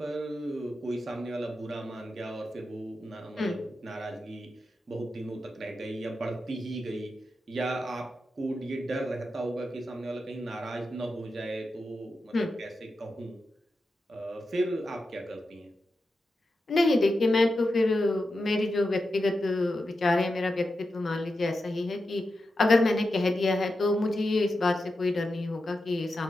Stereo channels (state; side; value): normal; both; correlation 0.90